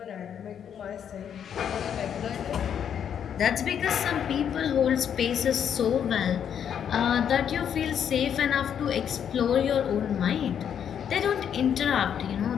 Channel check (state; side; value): quieter; right; 8.6 dB